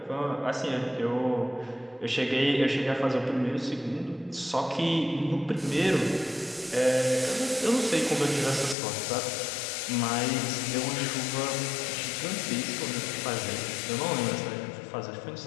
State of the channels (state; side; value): drops out; right; at 8.8 s